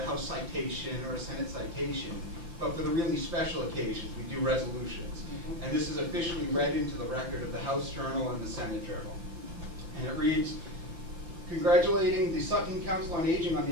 House citation or a Senate citation, but for the really special occasions, we do resolutions. And this is officially read into the record of the House Journal and the Senate Journal. And it reads, congratulating the Sutton Council on Aging on the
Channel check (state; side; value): late; left; 5.8 ms